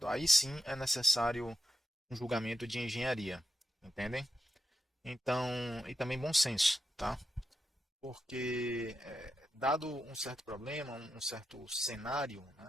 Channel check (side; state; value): both; normal; correlation 0.87